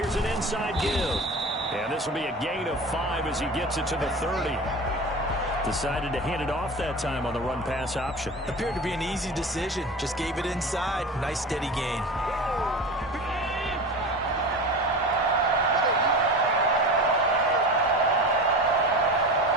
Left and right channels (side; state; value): both; normal; correlation 0.31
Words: an inside give. And this will be a gain of 5 as he gets it to the 30. Decided to hand it off that time on the run-pass option. Appeared to be an easy decision. Just gave it inside. Nice steady gain.